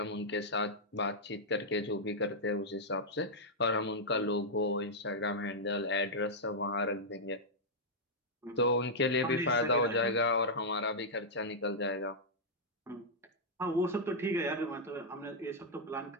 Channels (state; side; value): normal; both; correlation -0.07